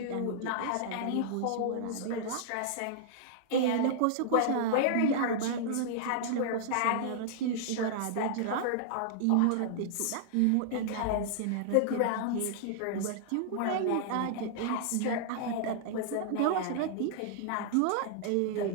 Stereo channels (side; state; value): both; different; correlation -0.01